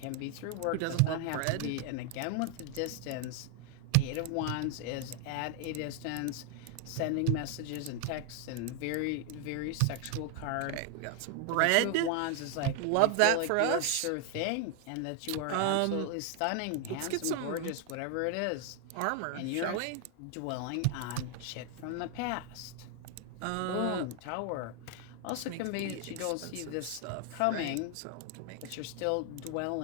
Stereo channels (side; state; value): both; different; correlation 0.00